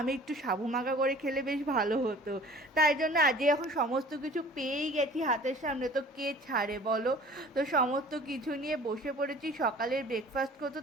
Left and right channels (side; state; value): both; normal; correlation 0.47